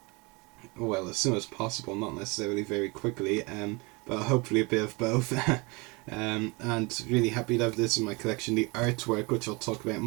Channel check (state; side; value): quieter; left; 27.6 dB